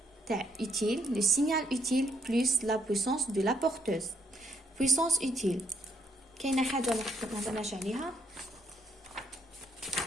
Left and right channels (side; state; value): both; normal; correlation 0.72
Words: تاع utile, le signal utile plus la puissance de la porteuse. Puissance utile كاينه حاجه ما هضرناش عليها.